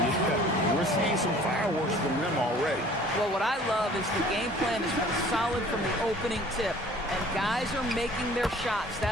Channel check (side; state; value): both; normal; correlation 0.51